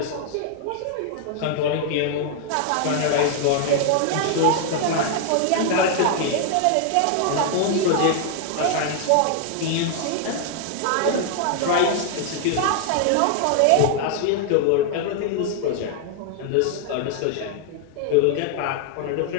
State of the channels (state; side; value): different; both; correlation 0.00